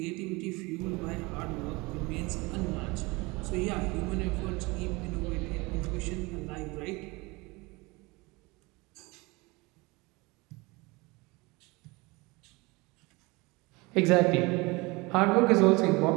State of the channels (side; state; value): left; quieter; 24.6 dB